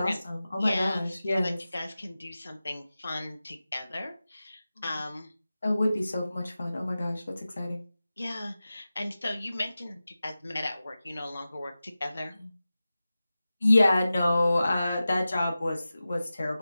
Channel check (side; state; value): both; inverted; correlation -0.95